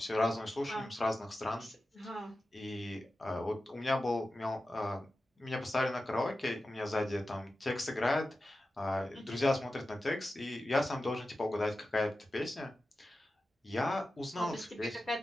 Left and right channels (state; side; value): normal; both; correlation 0.93